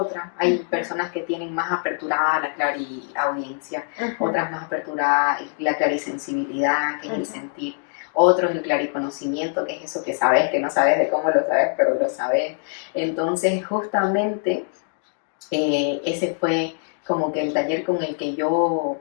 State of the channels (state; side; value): silent; right; 59 dB below the other